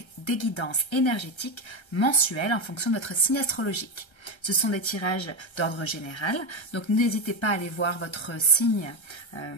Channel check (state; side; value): late; right; 1.3 ms